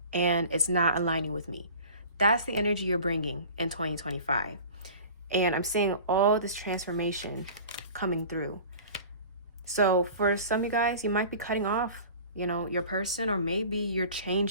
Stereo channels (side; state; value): both; inverted; correlation -0.41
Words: and it's not aligning with me. That's the energy you're bringing in 2025. And I'm seeing all this transformation coming through. So for some of you guys, you might be cutting off, your person, or maybe you're